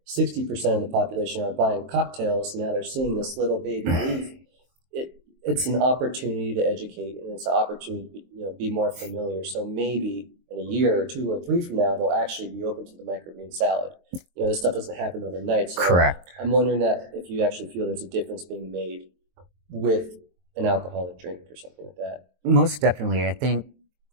60% of the population are buying cocktails, now they're seeing this little baby leaf. It's an opportunity to educate, and it's an opportunity to be more familiar. So maybe in a year or 2 or 3 from now, they'll actually be open to the microgreen salad. This stuff doesn't happen overnight. So Correct. I'm wondering that if you actually feel there's a difference being made with an alcoholic drink or something like that. Most definitely. I think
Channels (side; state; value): left; late; 23 ms